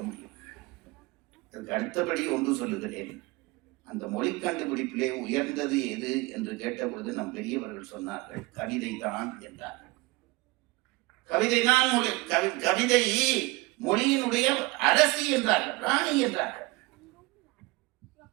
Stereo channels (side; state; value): left; quieter; 23.3 dB